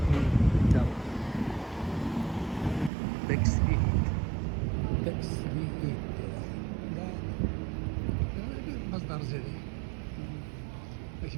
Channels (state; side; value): drops out; left; at 2.9 s